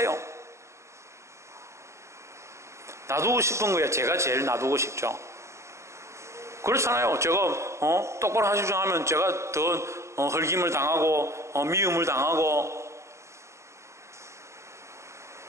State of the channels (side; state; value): left; late; 0.14 ms